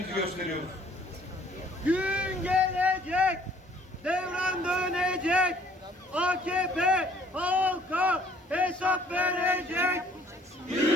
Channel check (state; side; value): normal; both; correlation 0.59